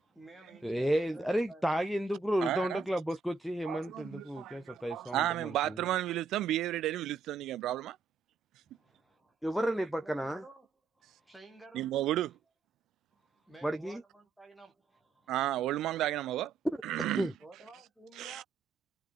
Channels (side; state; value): left; quieter; 4.5 dB